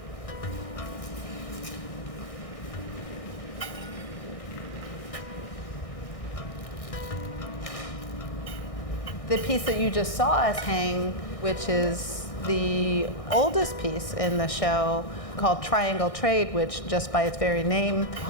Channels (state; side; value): late; right; 1.6 ms